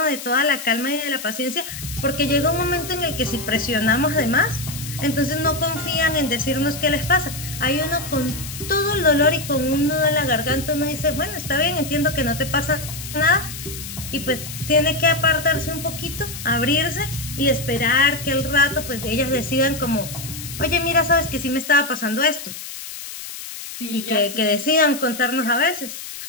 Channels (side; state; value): left; noise; hiss, 10 dB below the sound